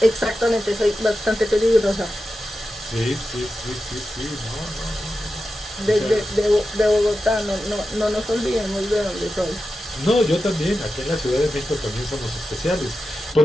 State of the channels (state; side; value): normal; both; correlation 0.91